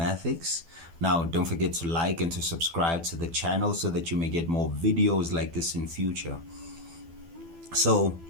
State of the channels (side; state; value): left; late; 12 ms